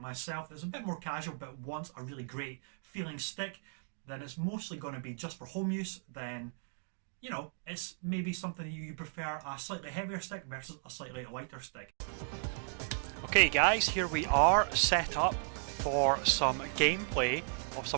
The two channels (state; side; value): silent; left; digital silence